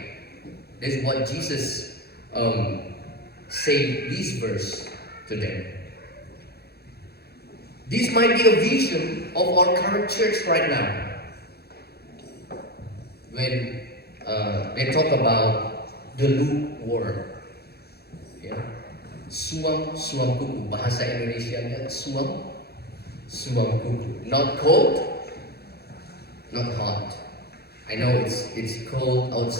That's what Jesus said this verse to them. This might be a vision of our current church right now. When they talk about the lukewarm, ya, suam kuku, bahasa Indonesianya suam kuku, not cold, not hot. I know it's cold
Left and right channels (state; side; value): late; right; 0.46 ms